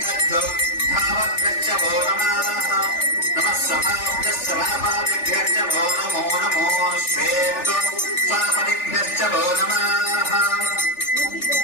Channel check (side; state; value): right; late; 3.4 ms